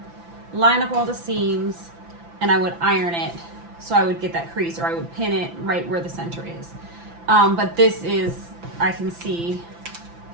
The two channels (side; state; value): left; late; 5.9 ms